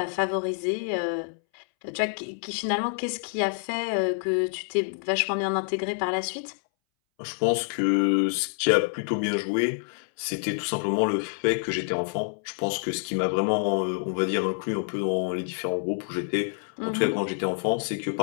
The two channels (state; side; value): silent; right; 60 dB below the other